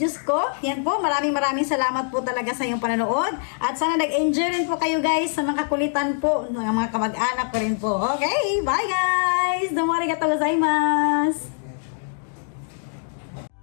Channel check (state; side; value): silent; right; digital silence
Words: ko. Yan po. Maraming salamat po talaga sa inyong panonood. At sana nag-enjoy rin po kayo, guys, sa mga kakulitan po ng mga kamag-anak ko rin po. Okay? Bye, guys! Domo arigatou gozaimasu!